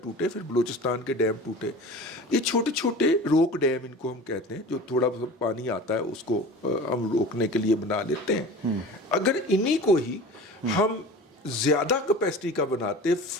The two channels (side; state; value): both; normal; correlation 0.37